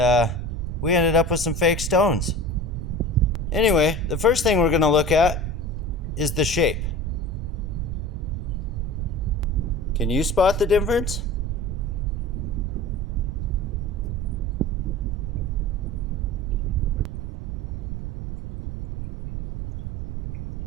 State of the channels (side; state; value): right; noise; rumble, 4 dB below the sound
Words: we ended up with some fake stones. Anyway, the first thing we're going to look at is the shape. Can you spot the difference?